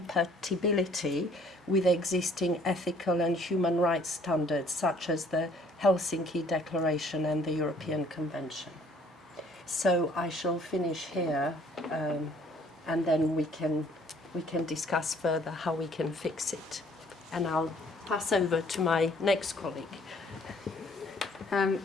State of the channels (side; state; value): both; normal; correlation 0.59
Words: with existing ethical and human rights standards, such as the Helsinki Declaration and the European Convention. So I shall finish here, and then we can discuss further how we can fix it. And I'll pass over to my next colleague. Thank